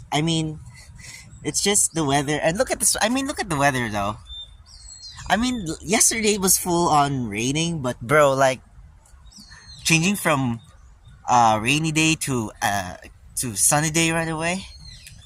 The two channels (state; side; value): identical; both; correlation 1.00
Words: mean, it's just the weather. And look at this. I mean, look at the weather though. I mean, yesterday was full on raining, but bro, like changing from rainy day to sunny day right away.